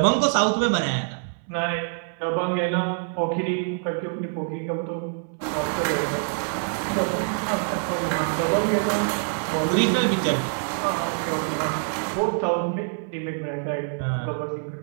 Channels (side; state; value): left; silent; 62 dB below the other